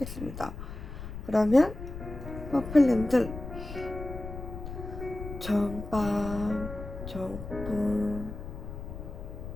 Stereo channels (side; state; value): left; noise; rumble, 9 dB below the sound